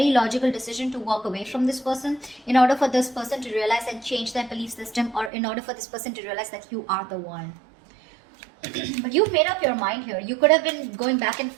logical decision to walk away from this person in order for this person to realize and change their belief system, or in order for this person to realize that you are the one. But you've made up your mind here. You could have been going back and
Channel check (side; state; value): left; drops out; at 5.3 s